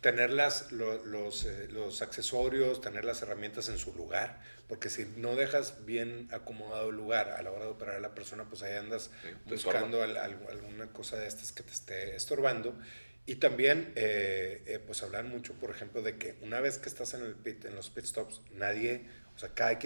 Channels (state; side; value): inverted; both; correlation -1.00